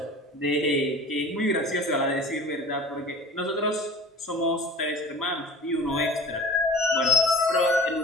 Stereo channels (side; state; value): both; normal; correlation 0.40